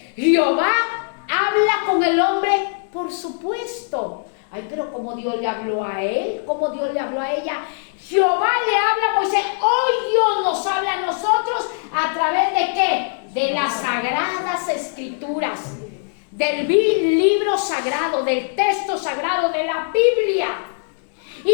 Jehová habla con el hombre, por supuesto. Ay, pero ¿cómo Dios le habló a él? ¿Cómo Dios le habló a ella? Jehová le habla a Moisés. Hoy Dios nos habla a nosotros a través de ¿qué? De las sagradas escrituras, del libro sagrado, del texto sagrado, de la Biblia.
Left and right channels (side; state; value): right; silent; digital silence